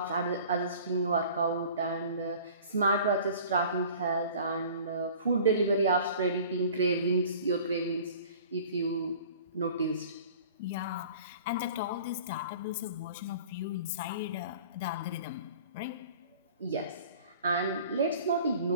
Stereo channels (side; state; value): both; inverted; correlation -0.45